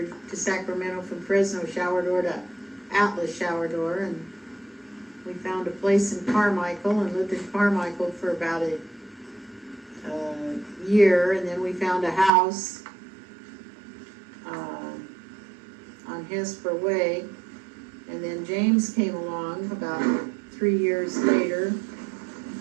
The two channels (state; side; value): drops out; left; at 12.3 s